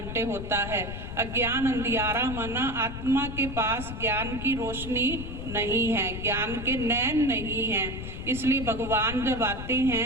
होता है। अज्ञान अंधियारा माना आत्मा के पास ज्ञान की रोशनी नहीं है, ज्ञान के नैन नहीं है। इसलिए भगवान जब आते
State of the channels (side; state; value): left; noise; rumble, 8 dB below the sound